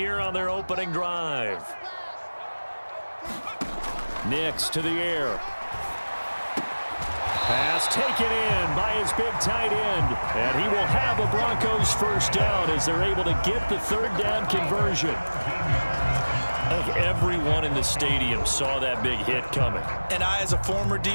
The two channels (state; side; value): inverted; both; correlation -1.00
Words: on their opening drive. Nix to the air. Pass taken in by his big tight end. And he will have a Broncos first down as they're able to get the third down conversion. I think everyone in the stadium saw that big hit coming. And I, as a former